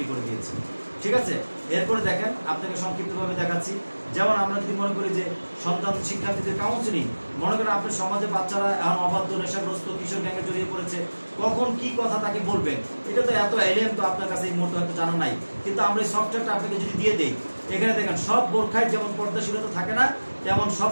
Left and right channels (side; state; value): both; inverted; correlation -1.00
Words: করে দিয়েছি। ঠিক আছে, এরপরে দেখেন আপনাকে সংক্ষিপ্তভাবে দেখাচ্ছি। যেমন আমরা যদি মনে করি যে সন্তান শিক্ষার্থীদের কাউন্সিলিং, মনে করেন আপনার সমাজে বাচ্চারা এখন অবাধ্য, নেশাগ্রস্ত, কিশোর গ্যাংয়ে জড়িয়ে পড়েছে, কখন কি কথা তাকে বলবেন, এটা তো এত এলিয়েন তো আপনার কাছে এই মুহূর্তে হয়তো জানা নাই। কিন্তু আমরা এই সফটওয়্যারটা আপনাকে যদি দিয়ে দেই, এখানে দেখেন সব বোরখায় যেমন পর্দাশীলতা থাকে না, তেমন সব